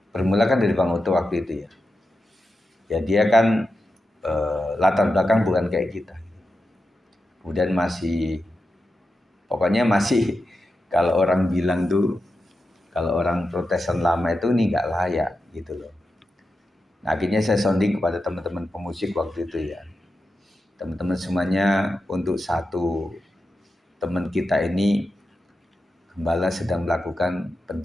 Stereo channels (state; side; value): normal; both; correlation 0.90